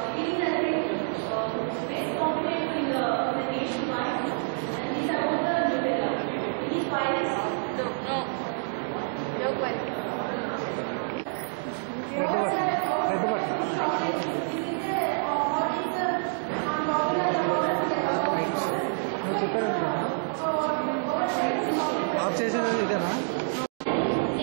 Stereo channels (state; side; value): silent; left; digital silence